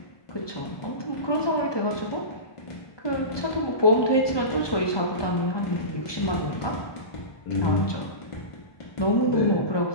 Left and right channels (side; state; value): right; late; 1.2 ms